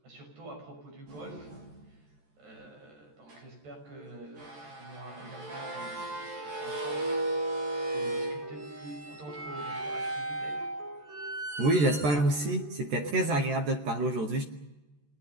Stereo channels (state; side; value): late; left; 14 ms